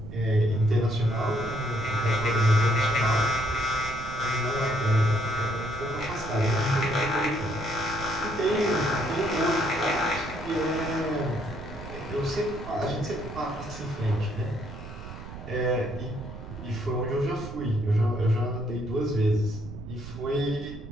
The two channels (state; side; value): noise; right; rumble, 12 dB below the sound